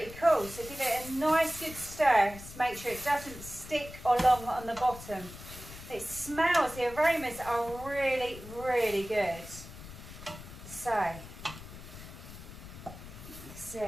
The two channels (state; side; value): noise; left; rumble, 14 dB below the sound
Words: cool, so give it a nice good stir to make sure it doesn't stick along on the bottom. It smells, the aromas are really, really good. So, that's